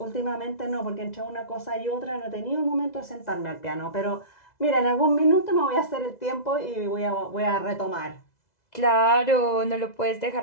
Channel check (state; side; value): late; right; 2.0 ms